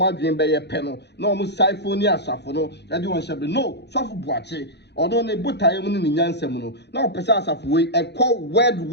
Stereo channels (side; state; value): right; late; 0.50 ms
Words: adwen be ye pe no na omo siphon ni asafo no e de won hye no sofo buache odo ne botaye mu ni nyansam no na opese asafo we e call